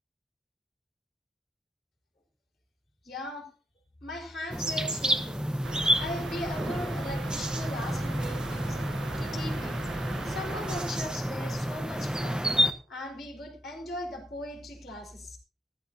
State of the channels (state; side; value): normal; both; correlation 0.78